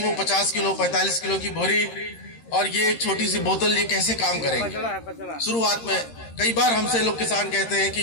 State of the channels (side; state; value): right; late; 13 ms